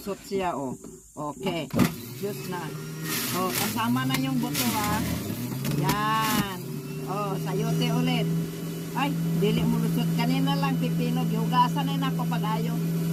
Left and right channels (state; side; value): identical; both; correlation 1.00